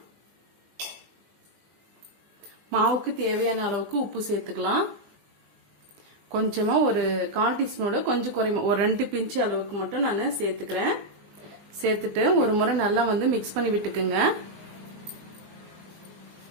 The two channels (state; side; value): late; left; 20 ms